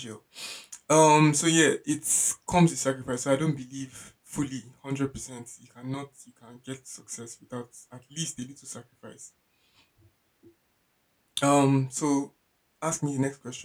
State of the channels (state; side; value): identical; both; correlation 1.00